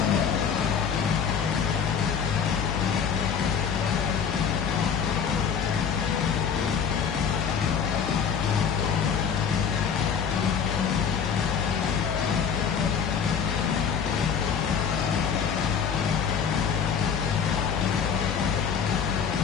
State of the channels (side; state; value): right; quieter; 7.1 dB